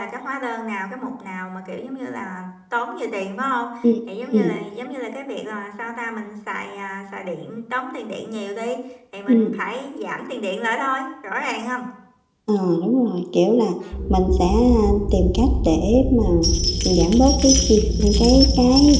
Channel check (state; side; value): identical; both; correlation 1.00